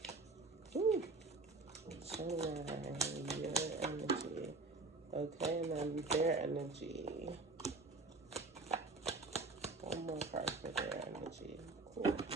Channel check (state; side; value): quieter; left; 3.5 dB